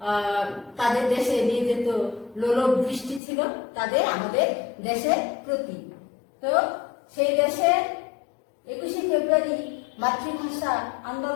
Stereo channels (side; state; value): right; drops out; at 3.2 s